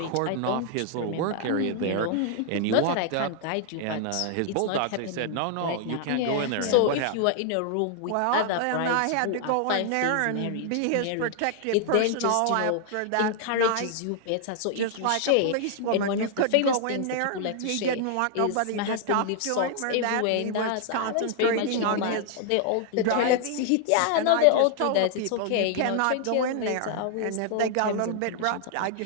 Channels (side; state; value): both; different; correlation 0.00